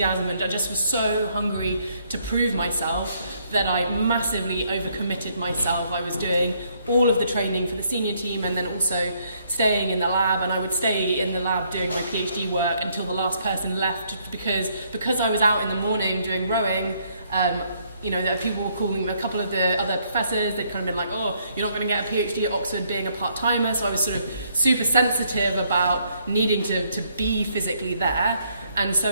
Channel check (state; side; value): inverted; both; correlation -0.70